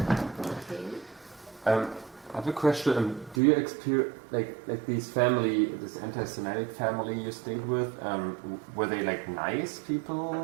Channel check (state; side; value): drops out; left; at 3.4 s